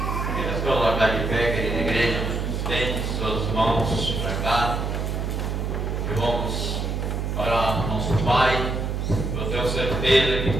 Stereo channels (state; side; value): noise; right; hum, 1 dB below the sound